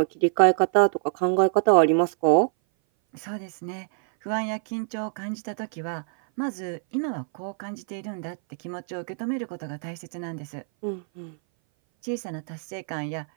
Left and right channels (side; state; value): left; silent; 58 dB below the other